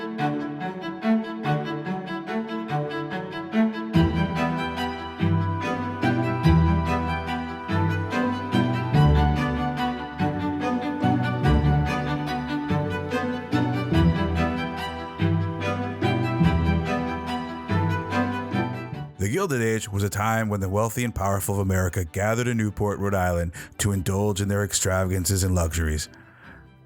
The Gilded Age was a time when the wealthy and powerful of America gathered in Newport, Rhode Island to indulge in their extravagances and luxuries.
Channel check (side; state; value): both; identical; correlation 1.00